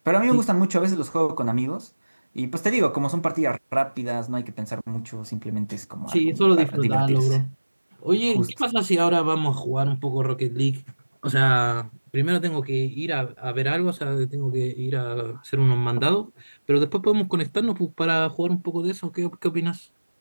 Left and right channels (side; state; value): both; inverted; correlation -1.00